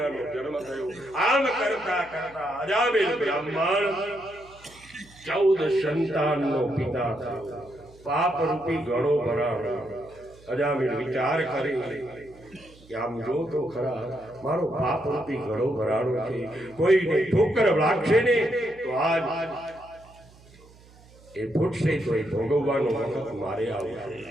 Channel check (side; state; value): right; noise; hum, 25 dB below the sound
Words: જન્મ થયો. આમ કરતા કરતા અજામિલ બ્રાહ્મણ 14 સંતાનનો પિતા થયો. પાપ રૂપી ઘડો ભરાયો. અજામિલ વિચાર કરે કે આમ જો તો ખરા મારો પાપ રૂપી ઘડો ભરાણો છે, કોઈને ઠોકર લાગશે ને તો આજ એ ફૂટશે તો એ ભોગવવાનો વખત મારે આવશે.